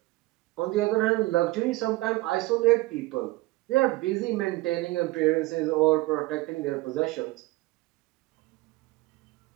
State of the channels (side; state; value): left; quieter; 20.1 dB